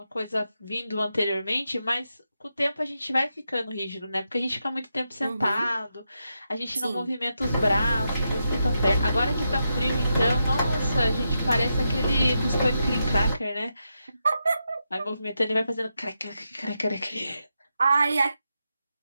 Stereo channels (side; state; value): both; inverted; correlation -0.85